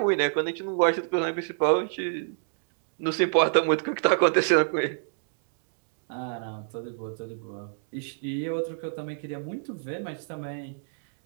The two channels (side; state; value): left; silent; digital silence